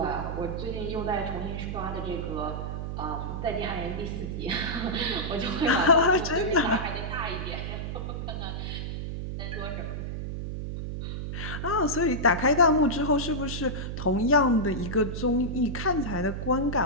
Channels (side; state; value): right; noise; hum, 5 dB below the sound